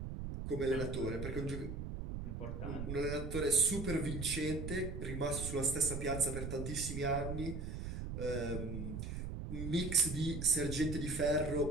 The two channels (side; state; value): right; noise; rumble, 5 dB below the sound